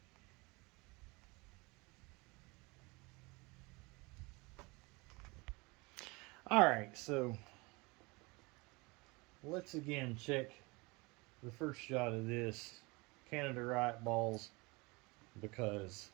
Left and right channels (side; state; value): left; quieter; 26.0 dB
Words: Alright, so let's again check the first shot of this Canada Riot balls, because